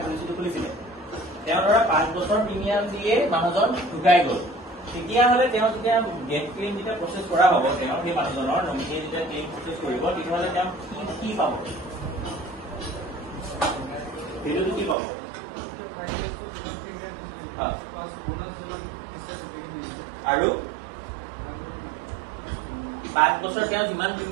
পলিচিটো খুলিছিলে তেওঁ ধৰা 5 বছৰ প্ৰিমিয়াম দিয়ে মানুহজন ঢুকাই গ'ল তেতিয়াহ'লে তেওঁ যেতিয়া ডেথ ক্লেইম যেতিয়া প্ৰচেছ কৰা হ'ব তেওঁ সেই মানুহজনৰ নমিনীয়ে যেতিয়া ক্লেইম প্ৰচেছ কৰিব তেতিয়াহ'লে তেওঁ কি পাব সেইটো কি পাব আৰু 5 বছৰ তেওঁ যিমান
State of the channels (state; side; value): drops out; left; at 15.0 s